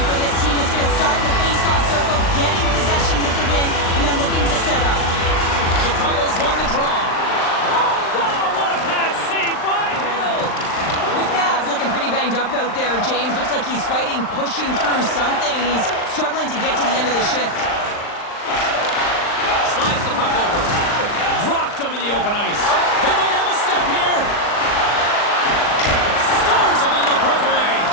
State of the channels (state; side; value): late; right; 39 ms